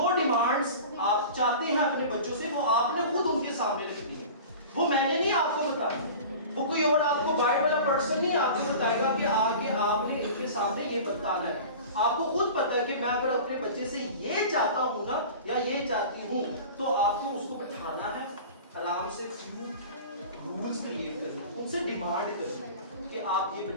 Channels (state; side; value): inverted; both; correlation -0.37